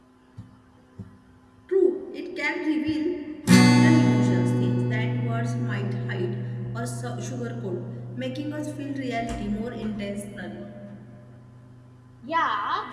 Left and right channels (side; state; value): both; identical; correlation 1.00